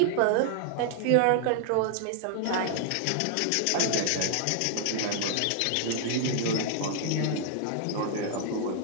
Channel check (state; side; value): different; both; correlation 0.00